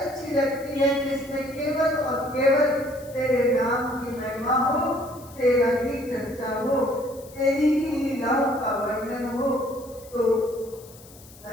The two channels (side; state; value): left; noise; hiss, 22 dB below the sound